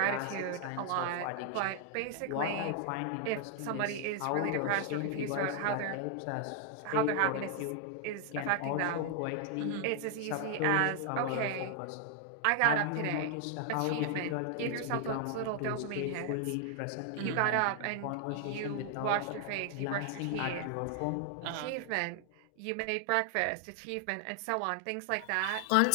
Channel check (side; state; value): both; different; correlation 0.00